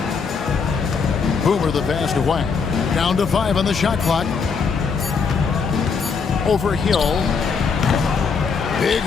Boomer the pass to Wang. Down to 5 on the shot clock. Over Hill. Big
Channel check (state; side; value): quieter; right; 5.5 dB